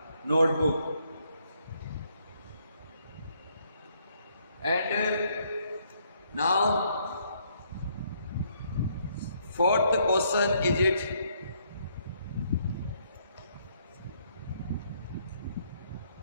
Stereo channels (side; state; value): both; inverted; correlation -0.70